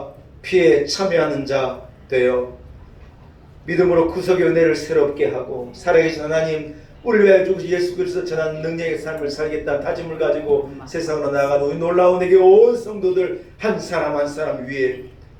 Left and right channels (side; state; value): both; identical; correlation 1.00